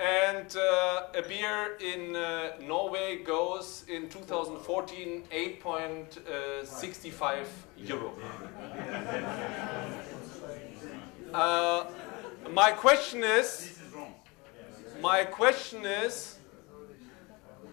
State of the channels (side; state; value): right; quieter; 26.0 dB